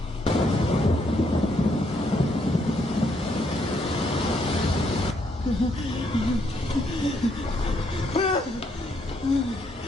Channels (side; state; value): both; normal; correlation 0.73